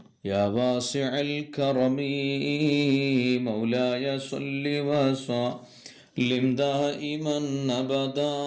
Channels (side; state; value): both; identical; correlation 1.00